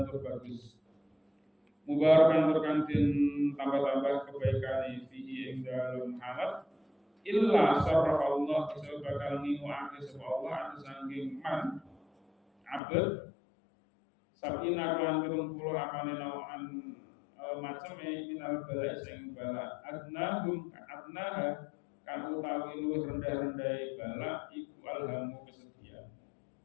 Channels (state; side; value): drops out; right; at 12.8 s